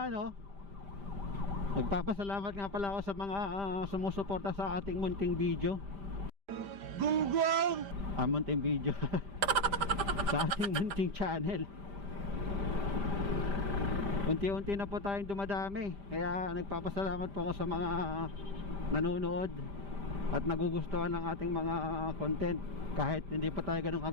no, magpapasalamat nga pala ako sa mga sumusuporta sa ating munting video. Gunggong! Munting video. Sa ating munting channel. Unti-unti na po tayong dumadami. Kaya nagpapasalamat po ako sa mga nanonood at nagugustuhan ng ating mga content. Kahit hindi pa tayo ganun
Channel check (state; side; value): late; left; 5.0 ms